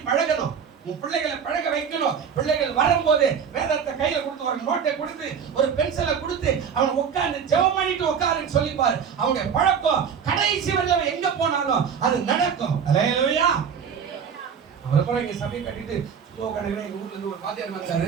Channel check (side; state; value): left; quieter; 7.1 dB